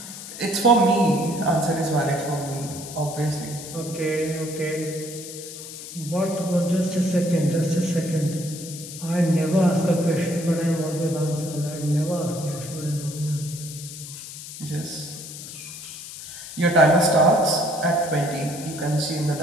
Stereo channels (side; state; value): left; noise; hiss, 12 dB below the sound